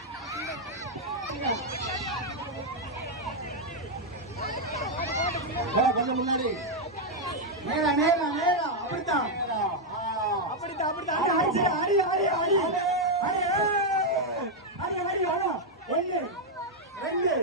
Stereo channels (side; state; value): both; normal; correlation -0.01